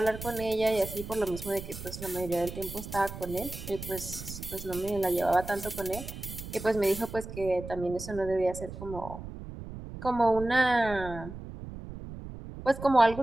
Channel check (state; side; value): noise; right; rumble, 11 dB below the sound